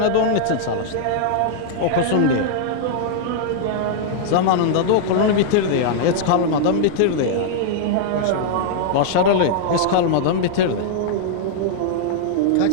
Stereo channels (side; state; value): both; different; correlation -0.01